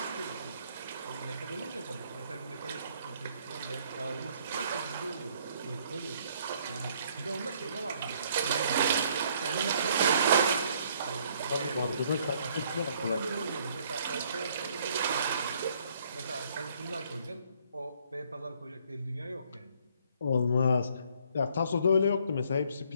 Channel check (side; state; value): both; inverted; correlation -0.64